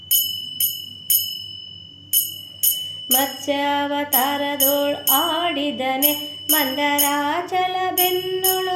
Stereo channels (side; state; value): both; identical; correlation 1.00